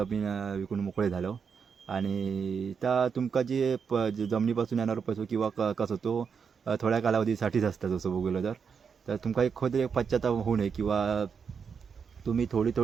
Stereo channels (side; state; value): left; quieter; 6.3 dB